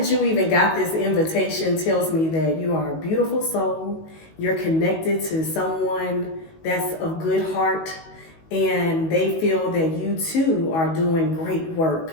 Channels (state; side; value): late; right; 19 ms